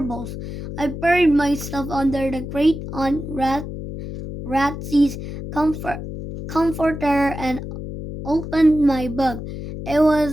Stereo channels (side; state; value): left; noise; hum, 8 dB below the sound